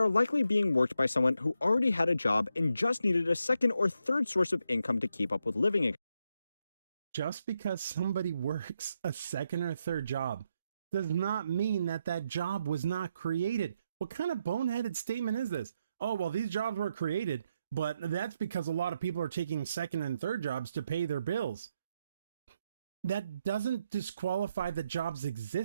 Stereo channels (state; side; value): inverted; both; correlation -0.82